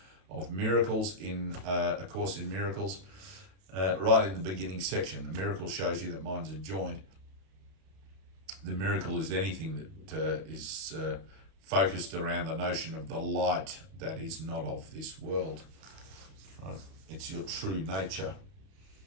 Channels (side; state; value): left; late; 31 ms